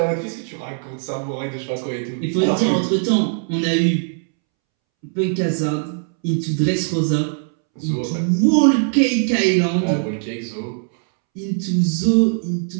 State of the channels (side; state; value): left; silent; 66 dB below the other